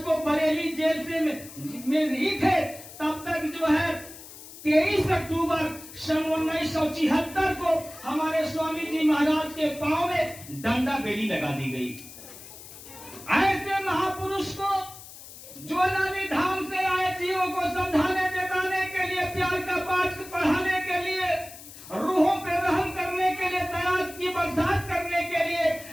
को बरेली जेल से में ही थे, तब तक जो है 23 अक्टूबर सन 1976 को हमारे स्वामी जी महाराज के पांव में डंडा बेड़ी लगा दी गई। ऐसे महापुरुष को, जो नानी धाम से आए जीवों को समझाने जताने के लिए, प्यार का पाठ पढ़ाने के लिए, रूहों पे रहम करने के लिए, दया की बरसात करने के लिए,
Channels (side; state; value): left; noise; hiss, 16 dB below the sound